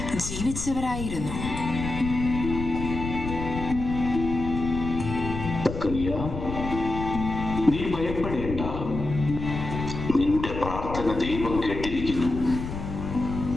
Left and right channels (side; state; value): left; noise; rumble, 6 dB below the sound